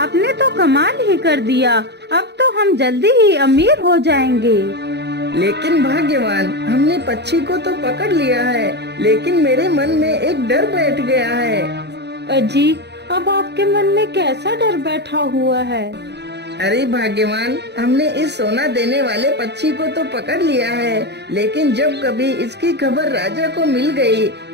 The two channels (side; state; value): left; late; 0.49 ms